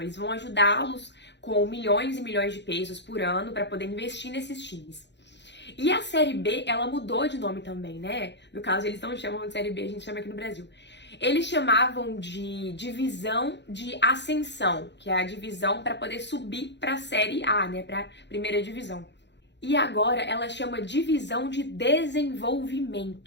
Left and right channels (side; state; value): right; late; 0.51 ms